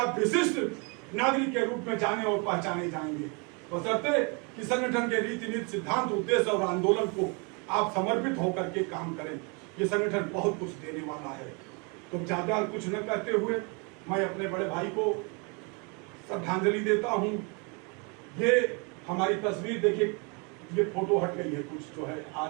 विशिष्ट नागरिक के रूप में जाने और पहचाने जाएंगे, बशर्ते कि संगठन के रीति नीति, सिद्धांत, उद्देश्य और आंदोलन को आप समर्पित होकर के काम करें। ये संगठन बहुत कुछ देने वाला है। तो ज्यादा कुछ न कहते हुए मैं अपने बड़े भाई को श्रद्धांजलि देता हूं। ये हमारी तस्वीर देखिए, ये फोटो हट गई है कुछ जो है,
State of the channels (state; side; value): quieter; left; 33.0 dB